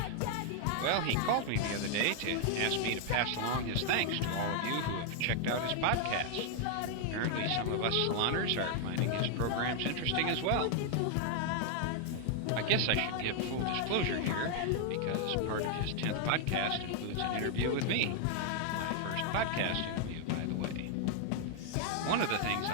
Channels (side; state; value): both; different; correlation 0.00